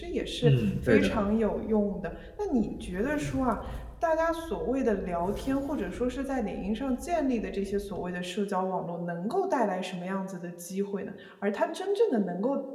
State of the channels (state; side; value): identical; both; correlation 1.00